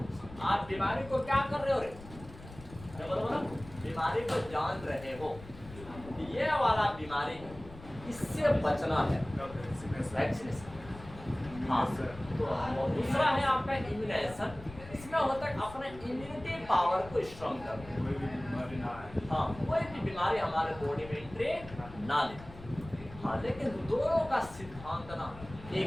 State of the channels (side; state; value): left; noise; rumble, 16 dB below the sound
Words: आप बीमारी को क्या कर रहे हो रे, बोलो बीमारी को जान रहे हो, ये वाला बीमारी इससे बचना है, वैक्सीनेशन। हाँ, तो दूसरा है आपका इम्यूनाइजेशन, इसमें होता है अपने इम्यूनिटी पावर को स्ट्रॉन्ग करना। हाँ, कोई भी बीमारी हमारे बॉडी में एंट्री ना ले। हाँ, लेकिन दोनों का सिद्धांत ना